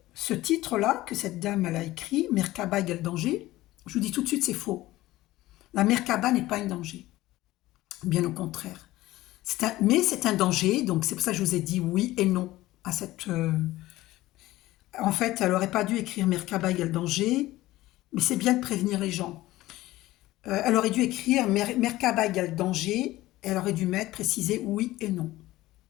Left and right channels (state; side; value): quieter; right; 17.1 dB